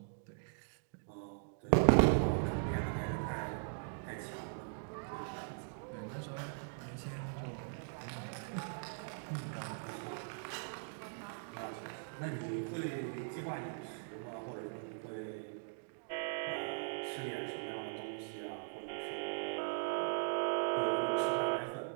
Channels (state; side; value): silent; left; digital silence